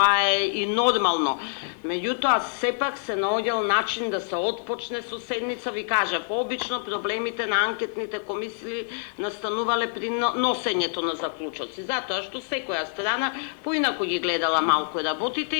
е и нормално. Меѓутоа, сепак се наоѓал начин да се отпочне со седница, ви кажав, обично проблемите на анкетните комисии настанувале при носењето на заклучоци, затоа што секоја страна поинаку ги гледала малку работите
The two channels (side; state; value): right; silent; digital silence